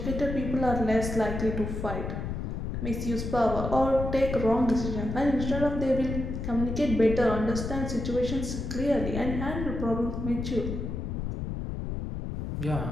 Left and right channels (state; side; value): noise; left; rumble, 4 dB below the sound